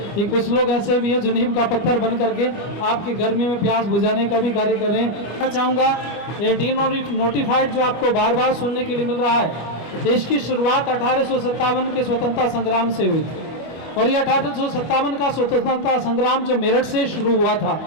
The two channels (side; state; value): right; late; 25 ms